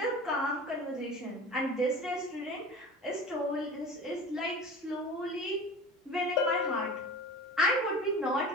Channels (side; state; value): both; normal; correlation 0.36